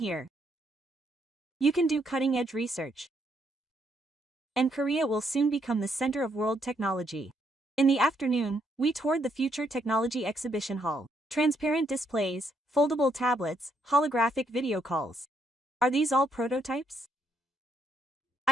You can do cutting-edge research. And Korea will soon become the center of world technology. In the afternoon, we toured the Future Technology Exhibition Hall. Transparent displays, foldable tablets, holographic video calls. Are these all prototypes?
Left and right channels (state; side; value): normal; both; correlation 0.74